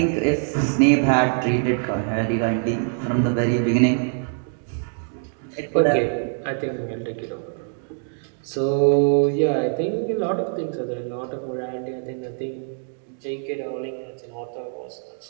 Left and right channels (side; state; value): left; silent; 55 dB below the other